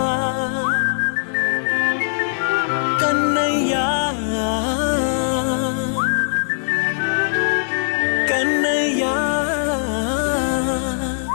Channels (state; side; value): silent; right; 66 dB below the other